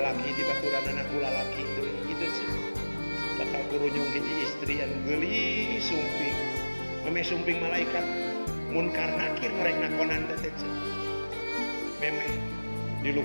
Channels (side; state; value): both; inverted; correlation -1.00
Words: dibaturan anakku lalaki deui, kitu sih. Bakal kurunyung hiji istri anu geuli sumping. Meme sumping malaikat munkar nakir norek nakonan teh teh. Meme di